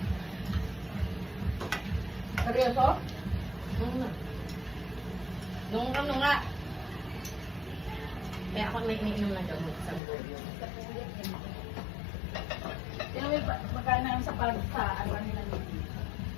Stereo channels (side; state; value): right; drops out; at 10.0 s